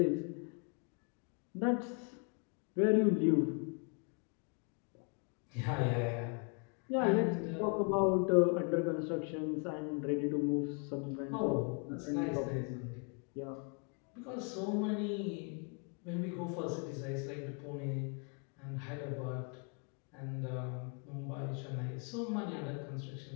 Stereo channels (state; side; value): quieter; right; 37.6 dB